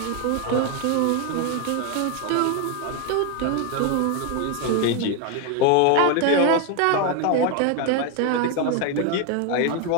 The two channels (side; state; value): both; different; correlation 0.01